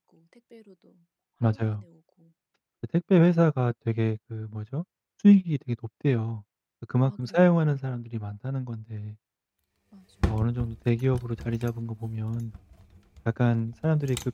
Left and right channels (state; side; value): identical; both; correlation 1.00